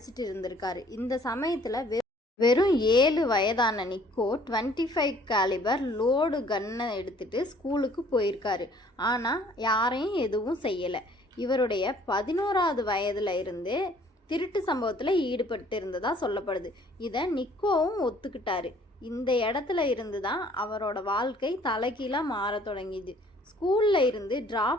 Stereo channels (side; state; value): both; normal; correlation 0.57